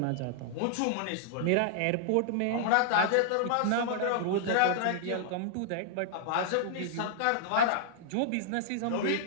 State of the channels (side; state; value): both; different; correlation -0.01